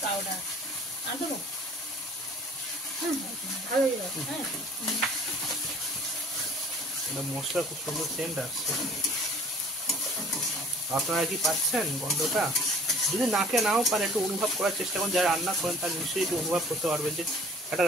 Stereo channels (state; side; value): normal; both; correlation 0.52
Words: পাউডার আর দেবো। ভালো হয়ে যাবে। হ্যাঁ এটা মশলা খুব সুন্দর সেন্ট আসছে। আপনারা কি পাচ্ছেন গন্ধটা? যদি নাকে নাও পারে একটু অনুভব করার চেষ্টা করুন। যারা রান্না করেন তারা নিশ্চয়ই একটু অনুভব করতে পারবেন যে একটা